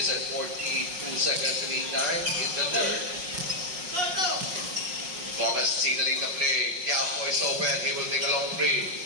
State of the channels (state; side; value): late; left; 5.5 ms